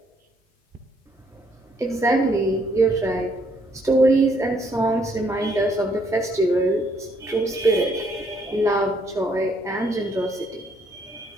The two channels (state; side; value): normal; both; correlation 0.69